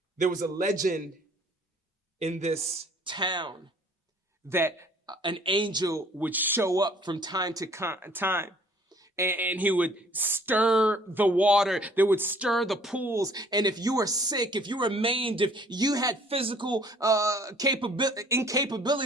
There was a legend in this town that an angel would show up from time to time. And he would stir the water. They would stir the pools. And if you were sick, if you were maimed, if you had physical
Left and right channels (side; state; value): both; normal; correlation 0.56